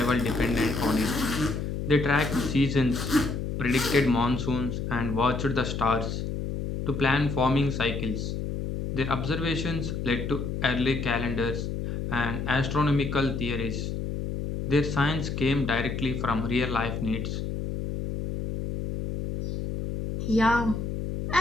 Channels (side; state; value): left; noise; hum, 4 dB below the sound